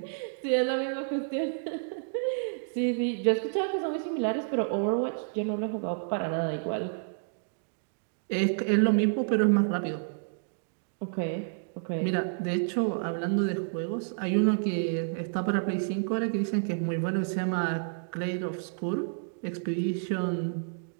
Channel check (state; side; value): silent; left; digital silence